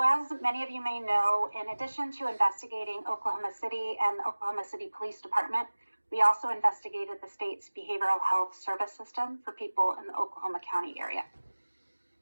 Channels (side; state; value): both; inverted; correlation -1.00